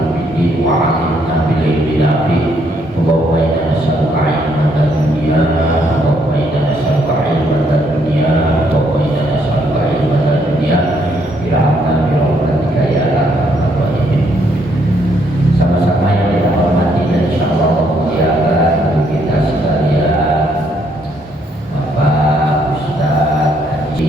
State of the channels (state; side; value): normal; both; correlation 0.71